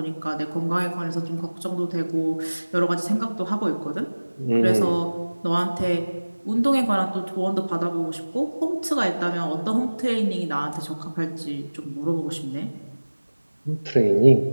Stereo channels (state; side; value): inverted; both; correlation -1.00